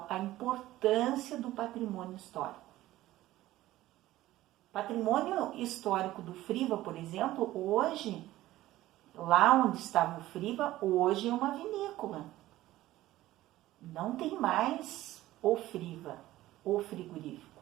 a importância do patrimônio histórico. Patrimônio histórico do Friva, por exemplo, hoje, lá onde estava o Friva, hoje é uma vinícola. Não tem mais o Friva, o frigorífico.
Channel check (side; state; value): left; quieter; 15.7 dB